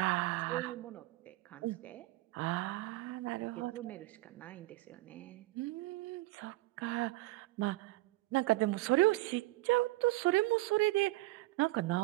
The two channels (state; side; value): quieter; left; 19.3 dB